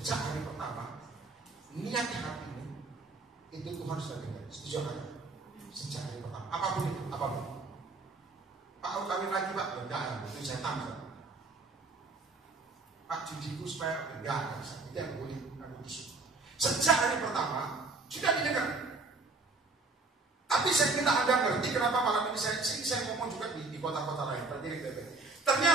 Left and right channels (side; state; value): left; quieter; 3.6 dB